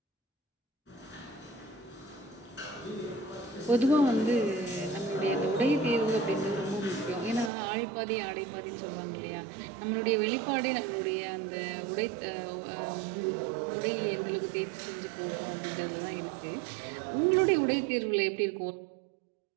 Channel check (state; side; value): drops out; left; at 7.5 s